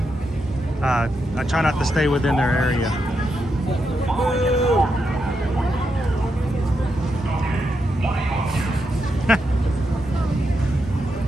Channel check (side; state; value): both; normal; correlation 0.84